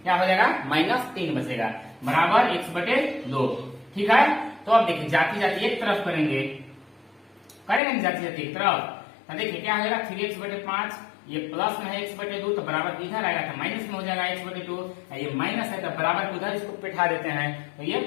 क्या हो जाएगा? -3 बचेगा बराबर x/2। ठीक है, तो अब देखिए जाती जाती एक तरफ करेंगे जाती जाती एक तरफ तो देखिए क्या हो जाएगा? 3x/5 ये प्लस में है x/2 तो बराबर इधर आएगा तो माइनस में हो जाएगा x/2। ये माइनस है तो बराबर उधर इसको बैठा देते हैं तो ये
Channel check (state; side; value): drops out; right; at 7.8 s